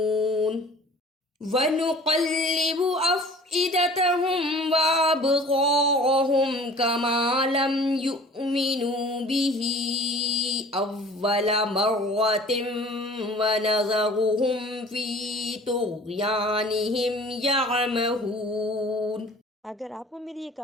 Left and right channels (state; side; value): normal; both; correlation 0.46